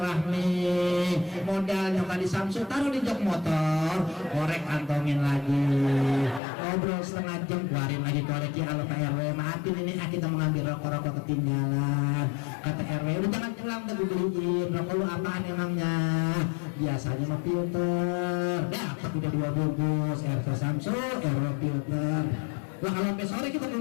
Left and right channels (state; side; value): drops out; right; at 6.4 s